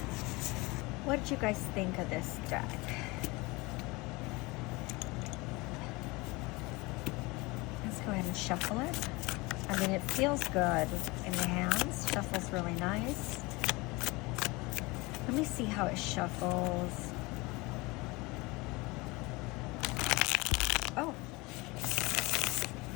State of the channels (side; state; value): right; quieter; 24.0 dB